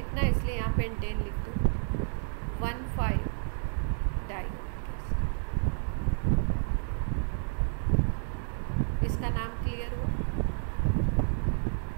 है इसलिए यहाँ पेंटेन लिख दो। 1,5 डाइयोनिक एसिड। इसका नाम क्लियर हुआ?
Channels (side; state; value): left; silent; 57 dB below the other